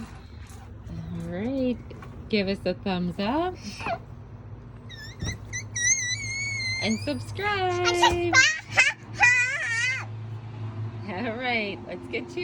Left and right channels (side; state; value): both; identical; correlation 1.00